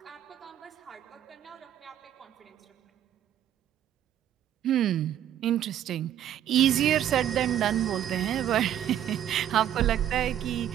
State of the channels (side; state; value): left; quieter; 10.9 dB